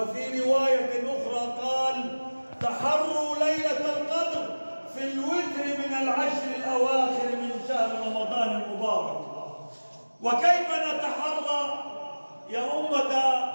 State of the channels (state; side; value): inverted; both; correlation -1.00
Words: رواية أخرى قال: تحروا ليلة القدر في الوتر من العشر الأواخر من شهر رمضان المبارك. وكيف نتحرى يا أمة